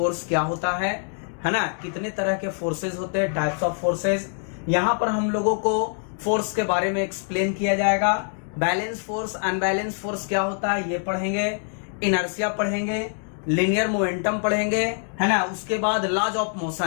क्या होता है ना, कितने तरह के फोर्सेस होते हैं, टाइप्स ऑफ फोर्सेस. यहाँ पर हम लोगों को फोर्स के बारे में एक्सप्लेन किया जाएगा. बैलेंस फोर्स, अनबैलेंस फोर्स क्या होता है ये पढ़ेंगे, इनर्शिया पढ़ेंगे, लीनियर मोमेंटम पढ़ेंगे, है ना. उसके बाद लॉज ऑफ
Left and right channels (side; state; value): right; silent; 56 dB below the other